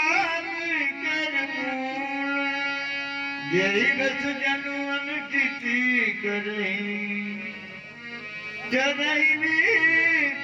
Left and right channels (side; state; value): both; identical; correlation 1.00